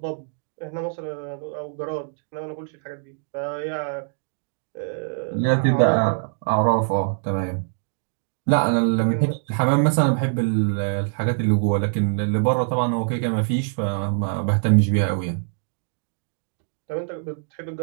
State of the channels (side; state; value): left; silent; digital silence